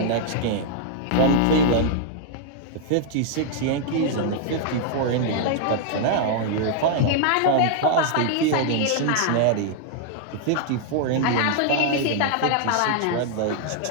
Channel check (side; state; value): both; different; correlation -0.01